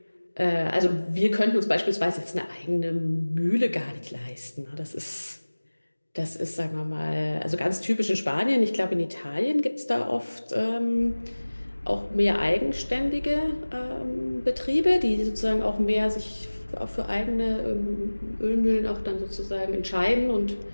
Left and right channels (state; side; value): inverted; both; correlation -1.00